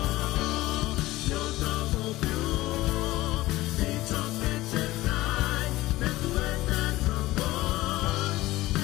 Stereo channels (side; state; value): right; quieter; 17.8 dB